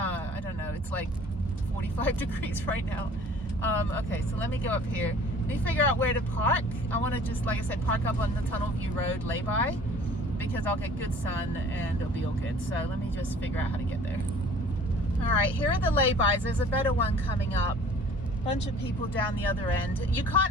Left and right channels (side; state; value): both; normal; correlation 0.50